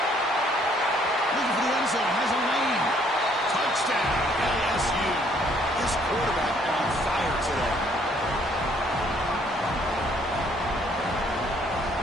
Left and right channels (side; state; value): both; normal; correlation 0.64